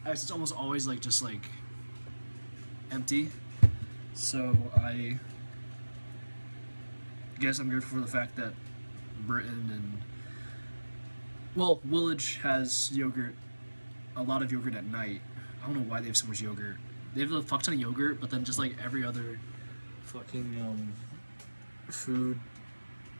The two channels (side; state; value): both; inverted; correlation -1.00